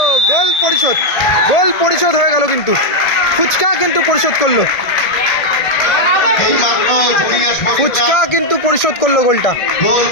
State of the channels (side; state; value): right; late; 1.6 ms